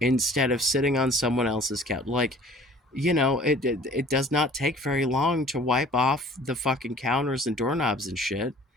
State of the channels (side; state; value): both; normal; correlation 0.49